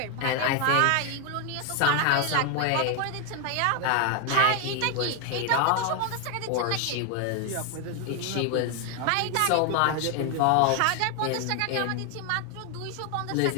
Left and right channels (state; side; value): different; both; correlation 0.01